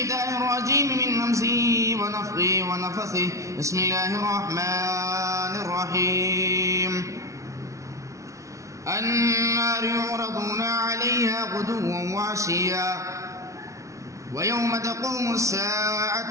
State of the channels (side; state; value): left; late; 0.15 ms